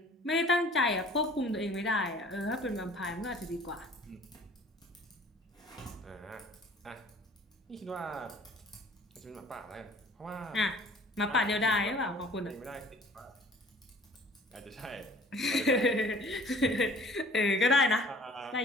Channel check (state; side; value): normal; both; correlation 0.51